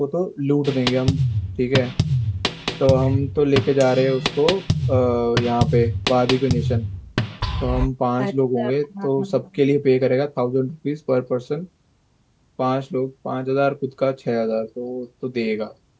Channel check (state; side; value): identical; both; correlation 1.00